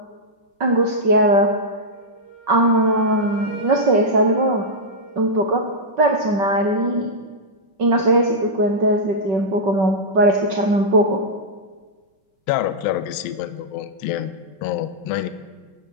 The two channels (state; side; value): late; left; 5.3 ms